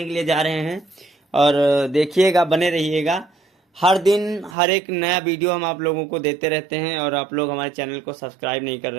के लिए जा रहे हैं और देखिएगा, बने रहिएगा। हर दिन हर एक नया वीडियो हम आप लोगों को देते रहते हैं और आप लोग हमारे चैनल को सब्सक्राइब नहीं कर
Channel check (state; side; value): drops out; left; at 4.5 s